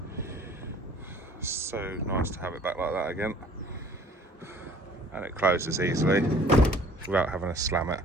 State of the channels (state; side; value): normal; both; correlation 0.52